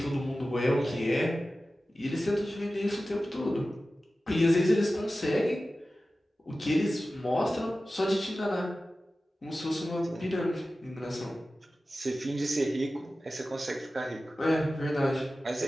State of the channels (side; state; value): both; normal; correlation 0.95